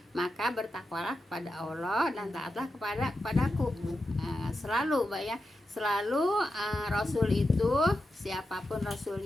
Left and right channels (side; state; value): both; normal; correlation 0.89